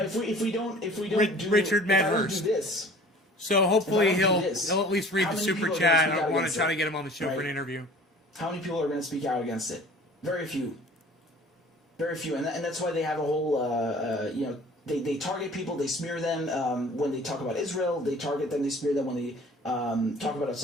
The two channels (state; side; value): normal; both; correlation 0.47